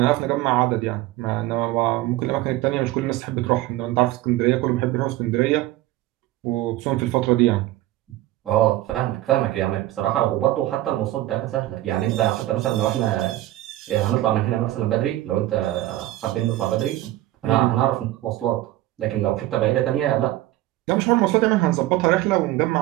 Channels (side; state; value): left; quieter; 15.9 dB